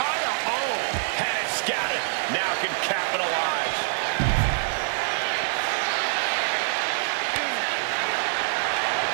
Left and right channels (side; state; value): left; silent; digital silence